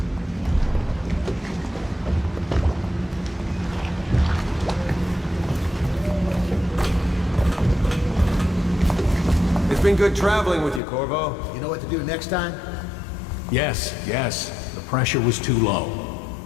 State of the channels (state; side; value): drops out; right; at 10.8 s